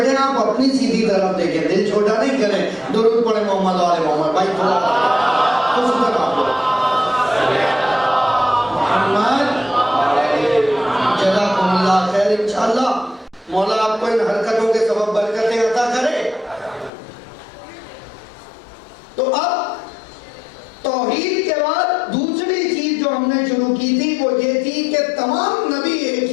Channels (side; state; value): right; drops out; at 16.9 s